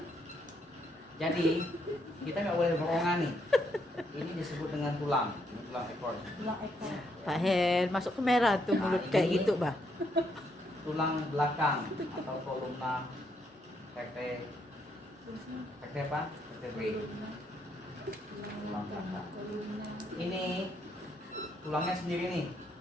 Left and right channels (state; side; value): normal; both; correlation 0.75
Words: Jadi kita nggak boleh borongan nih. Ini disebut dengan tulang, ini tulang ekor. Tulang ekor. Pak Hen masuk ke merah tuh Nah, mulut ini- kayak gitu, bah. Tulang belakang atau kolumna vertebrae apa? Vertebrae. Tulang belakang. Ini tulangnya sendiri nih,